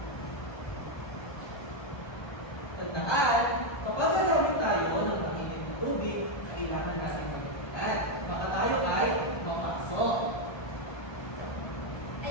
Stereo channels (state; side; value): late; right; 1.2 ms